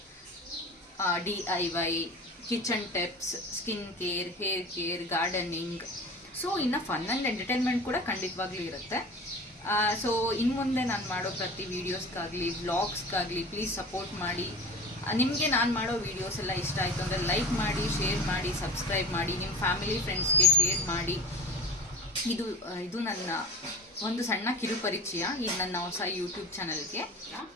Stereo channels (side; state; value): both; normal; correlation 0.35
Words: DIY, kitchen tips, skin care, hair care, gardening, so ಇನ್ನು ಫನ್ ಆ್ಯಂಡ್ ಎಂಟರ್ಟೈನ್ಮೆಂಟ್ ಕೂಡ ಖಂಡಿತವಾಗ್ಲೂ ಇರುತ್ತೆ. ಸೊ ಇನ್ನು ಮುಂದೆ ನಾನು ಮಾಡೋ ಪ್ರತಿ ವೀಡಿಯೋಸ್ಗಾಗಲಿ ವ್ಲಾಗ್ಸ್ಗಾಗಲಿ ಪ್ಲೀಸ್ ಸಪೋರ್ಟ್ ಮಾಡಿ. ನಿಮಗೆ ನಾನು ಮಾಡೋ ವೀಡಿಯೋಸ್ ಎಲ್ಲ ಇಷ್ಟ ಆಯಿತು ಅಂದರೆ ಲೈಕ್ ಮಾಡಿ, ಶೇರ್ ಮಾಡಿ, ಸಬ್ಸ್ಕ್ರೈಬ್ ಮಾಡಿ, ನಿಮ್ಮ ಫ್ಯಾಮಿಲಿ ಫ್ರೆಂಡ್ಸ್ಗೆ ಶೇರ್ ಮಾಡಿ. ಇದು ನನ್ನ ಒಂದು ಸಣ್ಣ ಕಿರುಪರಿಚಯ ಈ ನನ್ನ ಹೊಸ ಯೂಟ್ಯೂಬ್ ಚಾನಲ್ಗೆ.